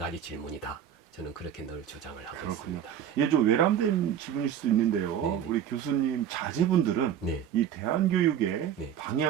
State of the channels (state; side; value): quieter; left; 9.4 dB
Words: 질문이다. 저는 그렇게 늘 주장을 하고 그렇군요. 있습니다. 예, 좀 외람된 질문일 수도 있는데요. 네네. 우리 교수님 자제분들은 네. 이 대안교육의 네.